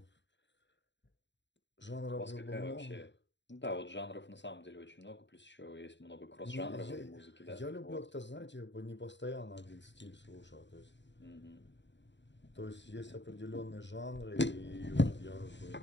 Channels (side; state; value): right; late; 0.52 ms